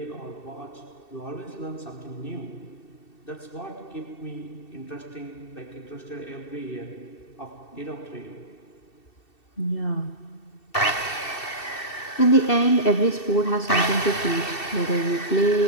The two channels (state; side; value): late; right; 2.7 ms